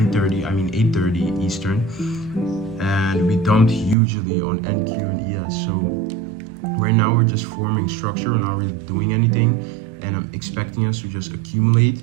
Eastern, and we dumped hugely on NQ and ES. So right now we're just forming structure, we're not really doing anything, and I'm expecting us to just accumulate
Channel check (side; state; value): left; drops out; at 4.0 s